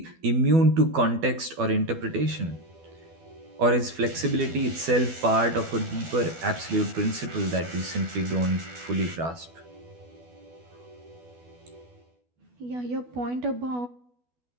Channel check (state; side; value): late; left; 12 ms